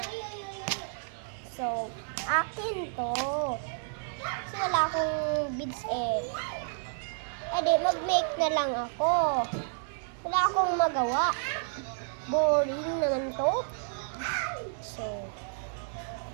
So, akin to. Kasi wala akong beads eh. Edi, mag-make na lang ako. Wala akong magawa. Boring naman to. So,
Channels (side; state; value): left; silent; digital silence